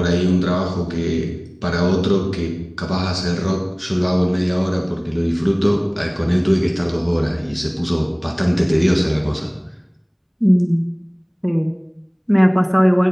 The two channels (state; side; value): identical; both; correlation 1.00